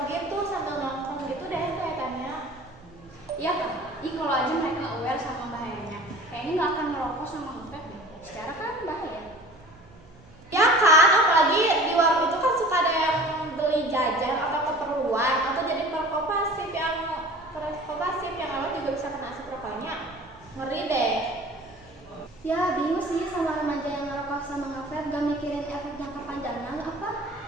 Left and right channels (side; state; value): right; noise; hum, 25 dB below the sound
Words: gitu sambil nongkrong gitu deh kelihatannya. Iya kan? Kalau aja mereka aware sama bahayanya, kayaknya nggak akan merokok sama nge-vape deh. Secara kan bahaya. Ya kan, apalagi di warung itu kan suka ada yang beli jajan atau keperluan atau jadi perokok pasif yang lalu juga bisa kena asap rokoknya. Ngeri deh. Ya bingung sih sama remaja yang ngerokok sama nge-vape, gak mikirin efek jangka panjangnya apa?